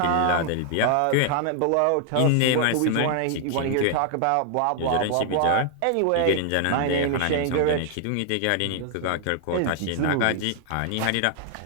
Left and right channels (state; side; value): different; both; correlation 0.00